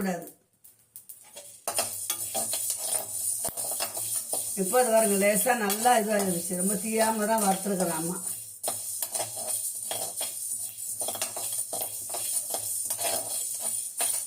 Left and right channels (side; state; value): both; identical; correlation 1.00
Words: இப்போ அது பாருங்க, லேசா நல்லா இதுவாகிடுச்சு. ரொம்ப தீயாம தான் வறுத்துருக்குறேன் அம்மா.